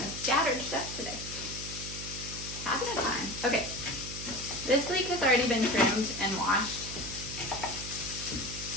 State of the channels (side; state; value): right; noise; hum, 10 dB below the sound